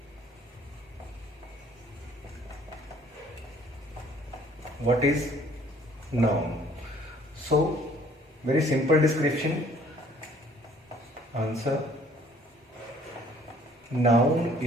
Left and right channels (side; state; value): both; normal; correlation 0.58